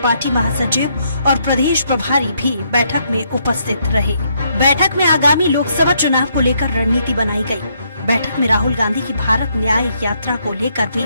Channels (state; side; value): inverted; both; correlation -0.74